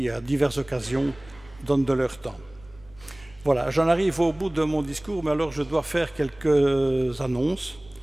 à diverses occasions, donnent de leur temps. Voilà, j'en arrive au bout de mon discours, mais alors je dois faire quelques annonces.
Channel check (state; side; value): noise; right; rumble, 25 dB below the sound